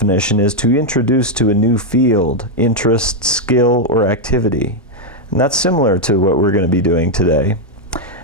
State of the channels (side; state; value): both; normal; correlation 0.00